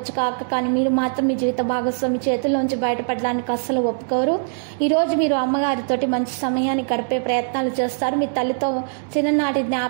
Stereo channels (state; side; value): silent; left; 63 dB below the other